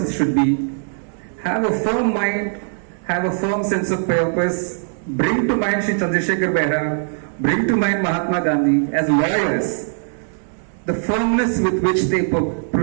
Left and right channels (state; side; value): silent; left; digital silence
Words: should be. Have a firm mind, have a firm sense of purpose. Bring to mind Shri Chandrasekhar Behra, bring to mind Mahatma Gandhi. As lawyers, the firmness with which they